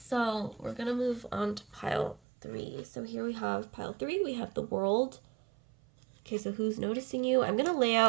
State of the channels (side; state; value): left; drops out; at 2.2 s